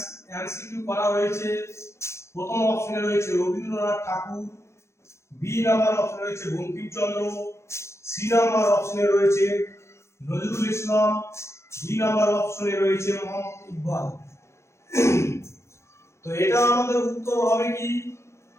এমসিকিউ করা হয়েছে। প্রথম অপশনে রয়েছে রবীন্দ্রনাথ ঠাকুর, বি নাম্বার অপশনে রয়েছে বঙ্কিমচন্দ্র, সি নাম্বার অপশনে রয়েছে নজরুল ইসলাম, ডি নাম্বার অপশনে রয়েছে মোহাম্মদ ইকবাল। তো এটা আমাদের উত্তর হবে কি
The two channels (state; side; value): late; right; 0.13 ms